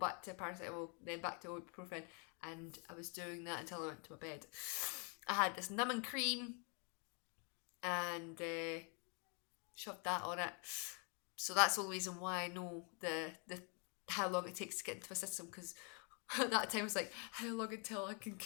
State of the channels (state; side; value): quieter; right; 37.1 dB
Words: to paracetamol, then back to ibuprofen. And I was doing that until I went to my bed. I had this numbing cream and shoved that on it. So that's the only reason why I know the how long it takes to get into my system, because at that time I was like, how long until I can